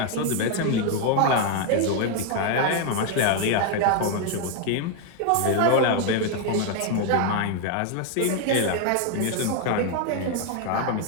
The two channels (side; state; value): both; different; correlation 0.01